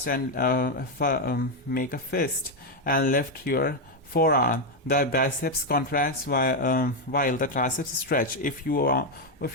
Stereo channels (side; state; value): both; normal; correlation 0.04